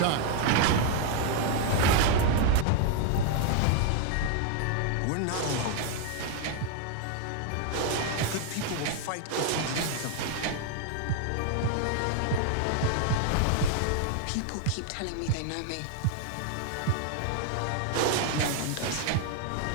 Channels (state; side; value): different; both; correlation 0.00